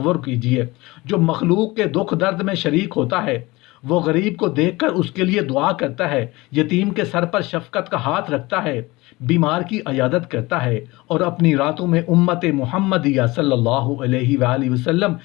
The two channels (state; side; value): quieter; right; 21.6 dB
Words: کیجئے جو مخلوق کے دکھ درد میں شریک ہوتا ہے، وہ غریب کو دیکھ کر اس کے لیے دعا کرتا ہے، یتیم کے سر پر شفقت کا ہاتھ رکھتا ہے، بیمار کی عیادت کرتا ہے اور اپنی راتوں میں امت محمدیہ صلی اللہ علیہ وآلہ وسلم